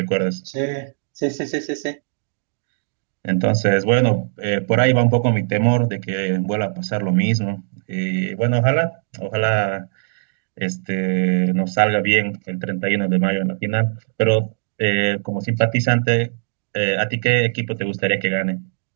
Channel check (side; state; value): left; silent; digital silence